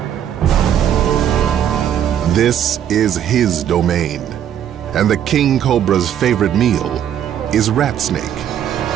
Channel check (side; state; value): left; quieter; 9.9 dB